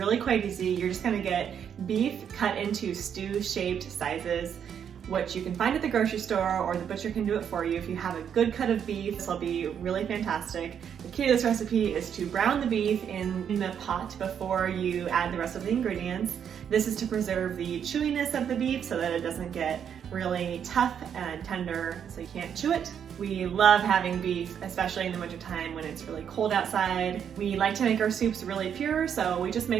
quite easy. You're just gonna get beef cut into stew-shaped sizes, which you can find at the grocery store, or the butcher can do it for you. If you have a good cut of beef, this will be really fantastic. The key to this recipe is to brown the beef in the pot before you add the rest of the ingredients. This is to preserve the chewiness of the beef so that it doesn't get really tough and tender so you can't chew it. We love having beef, especially in the wintertime when it's really cold outside. We like to make our soups really pure, so we just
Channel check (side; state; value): left; quieter; 8.3 dB